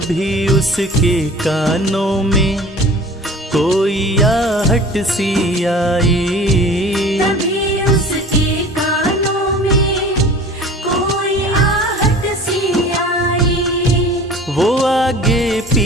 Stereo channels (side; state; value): both; normal; correlation 0.43